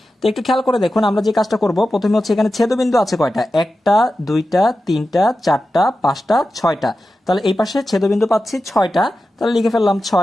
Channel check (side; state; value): both; normal; correlation 0.92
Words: তো একটু খেয়াল করে দেখুন, আমরা যে কাজটা করব, প্রথমে হচ্ছে এখানে ছেদবিন্দু আছে কয়টা? একটা, 2টা, 3টা, 4টা, 5টা, 6টা। তাহলে এই পাশে ছেদবিন্দু পাচ্ছি 6টা, তাহলে লিখে ফেললাম